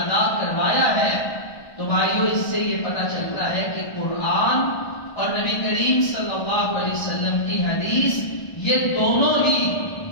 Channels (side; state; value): right; late; 1.3 ms